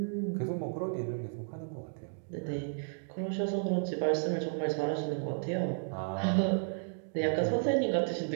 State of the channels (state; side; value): silent; left; digital silence